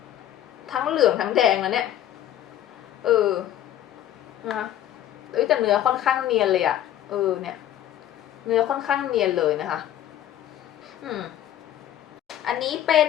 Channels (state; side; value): quieter; right; 11.7 dB